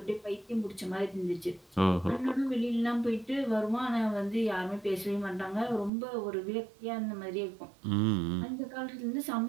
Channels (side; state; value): left; drops out; at 5.9 s